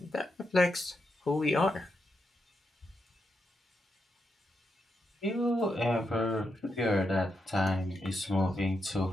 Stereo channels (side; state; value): both; normal; correlation 0.84